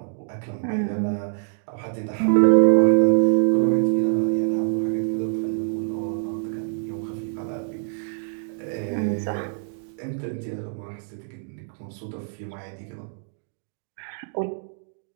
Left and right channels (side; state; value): left; silent; digital silence